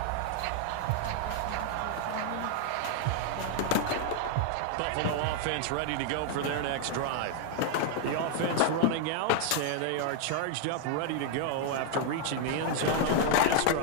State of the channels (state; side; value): different; both; correlation 0.00